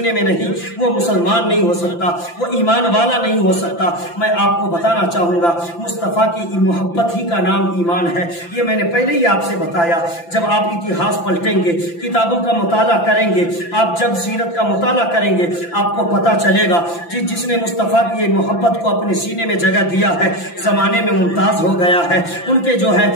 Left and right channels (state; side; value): late; right; 5.9 ms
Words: میں نہیں، وہ مسلمان نہیں ہو سکتا، وہ ایمان والا نہیں ہو سکتا۔ میں آپ کو بتانا چاہوں گا مصطفیٰ کی محبت ہی کا نام ایمان ہے۔ یہ میں نے پہلے ہی آپ سے بتایا۔ جب آپ اتہاس پلٹیں گے، کتابوں کا مطالعہ کریں گے، آپ جب سیرت کا مطالعہ کریں گے، آپ کو پتا چلے گا جس نے مصطفیٰ کی محبت کو اپنے سینے میں جگہ دیا ہے زمانے میں ممتاز ہو گیا ہے۔ ان کے جو ہے